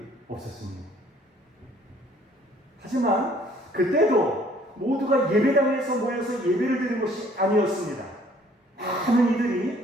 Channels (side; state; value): both; normal; correlation 0.59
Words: 없었습니다. 하지만 그때도 모두가 예배당에서 모여서 예배를 드리는 것이 아니었습니다. 많은